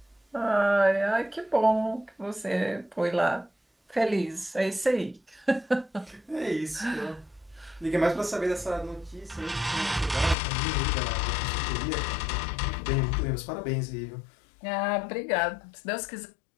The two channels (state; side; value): drops out; right; at 10.4 s